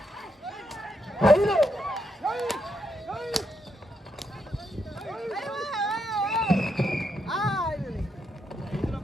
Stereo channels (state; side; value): normal; both; correlation 0.79